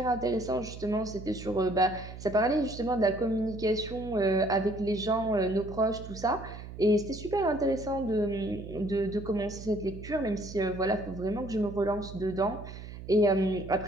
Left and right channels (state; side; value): noise; right; hum, 12 dB below the sound